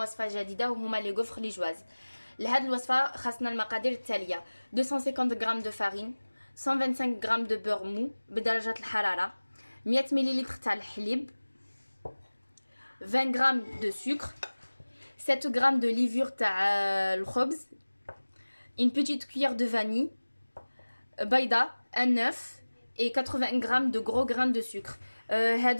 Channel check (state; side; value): inverted; both; correlation -1.00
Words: جديده وهما لي غوفر لي جواز. لهاد الوصفه خاصنا المقادير التاليه: 250 غرام دو فارين، 125 غرام دو بور مو بدرجه الحراره، 100 مليلتر تاع الحليب، 20 غرام دو سكر، 7 غرام دو ليفور تاع الخبز، une petite cuillère de vanille, بيضه، un œuf et 80 غرام de gros grains de sucre.